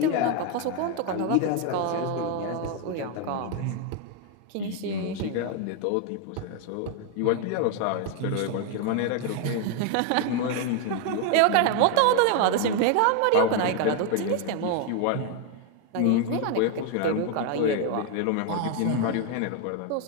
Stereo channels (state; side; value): different; both; correlation 0.01